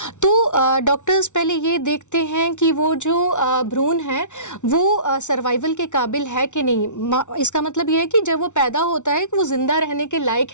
तो डॉक्टर्स पहले ये देखते हैं कि वो जो भ्रूण है वो सर्वाइवल के काबिल है कि नहीं। इसका मतलब ये है कि जब वो पैदा होता है कि वो ज़िंदा रहने के लायक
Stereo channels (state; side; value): late; right; 0.85 ms